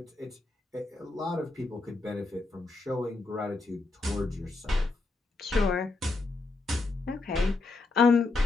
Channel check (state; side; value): quieter; right; 3.4 dB